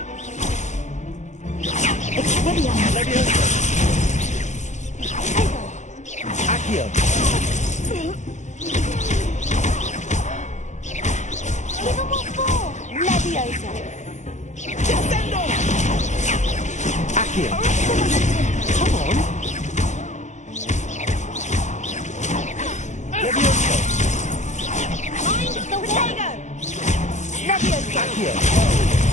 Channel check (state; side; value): late; right; 0.34 ms